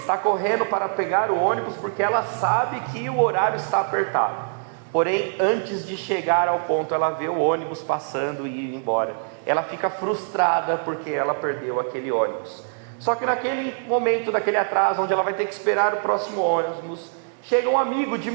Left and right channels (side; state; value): left; silent; digital silence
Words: correndo para pegar o ônibus porque ela sabe que o horário está apertado. Porém, antes de chegar ao ponto, ela vê o ônibus passando e ir embora. Ela fica frustrada porque ela perdeu aquele ônibus. Só que naquele momento, daquele atraso, onde ela vai ter que esperar o próximo ônibus, chega um amigo de